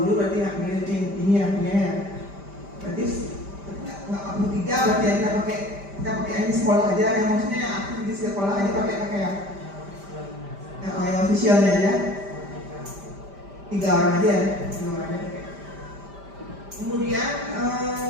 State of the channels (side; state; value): left; late; 5.0 ms